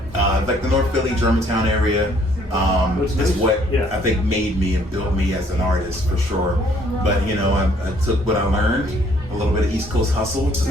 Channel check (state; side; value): normal; both; correlation 0.63